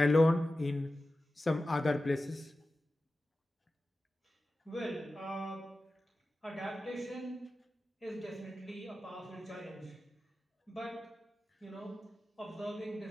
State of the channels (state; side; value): normal; both; correlation 0.94